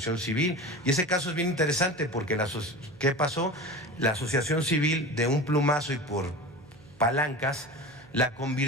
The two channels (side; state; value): right; noise; hum, 25 dB below the sound